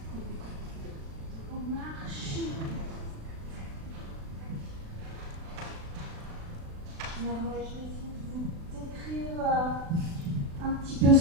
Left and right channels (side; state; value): left; late; 36 ms